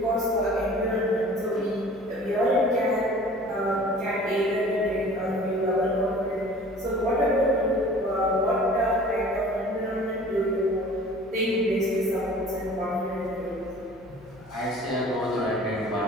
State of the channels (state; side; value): noise; left; hum, 24 dB below the sound